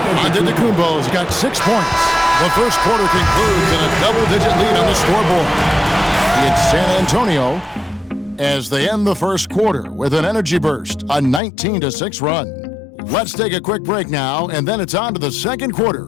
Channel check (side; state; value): right; drops out; at 11.4 s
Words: Antetokounmpo's got 6 points. The first quarter concludes in a double-digit lead on the scoreboard. It's San Antonio as they end the first quarter with an energy burst, a 19-6 run. Let's take a quick break now, and then it's on to the second